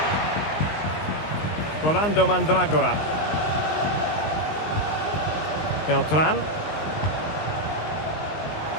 Rolando Mandragora. Beltran.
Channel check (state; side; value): late; right; 19 ms